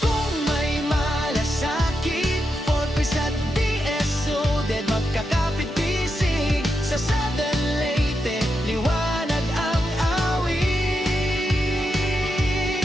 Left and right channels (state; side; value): normal; both; correlation 0.85